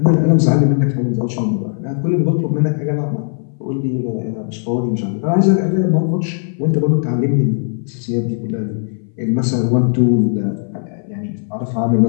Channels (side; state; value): right; silent; 62 dB below the other